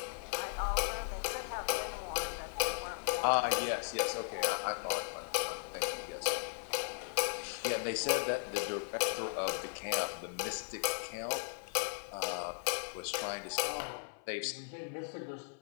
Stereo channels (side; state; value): right; silent; 53 dB below the other